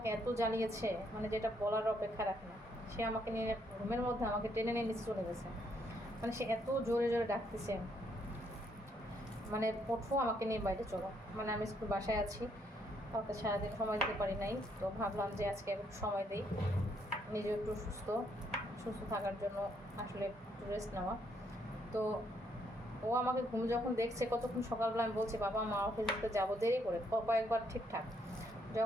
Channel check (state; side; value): normal; both; correlation 0.72